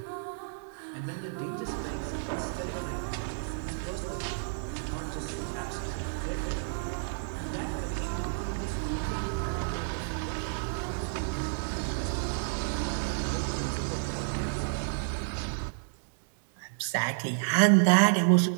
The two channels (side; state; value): left; silent; digital silence